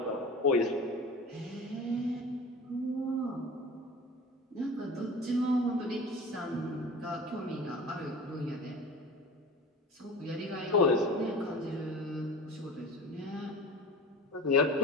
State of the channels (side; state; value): both; normal; correlation 0.35